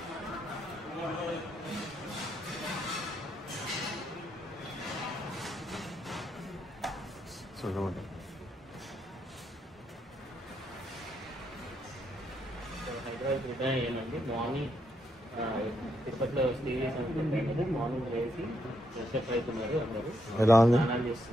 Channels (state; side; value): normal; both; correlation 0.78